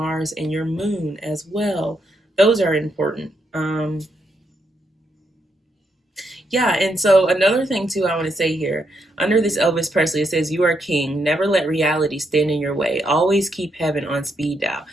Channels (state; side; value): normal; both; correlation 0.79